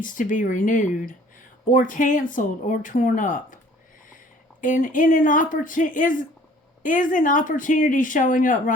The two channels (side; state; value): both; normal; correlation 0.53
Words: to be renewed, or canceled, or torn up. And an opportunity showing up